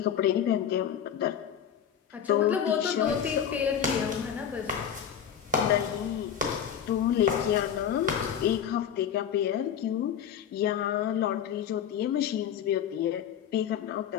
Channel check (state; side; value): quieter; right; 8.9 dB